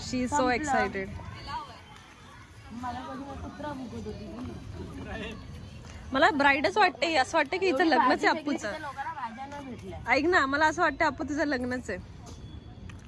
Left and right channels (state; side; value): identical; both; correlation 1.00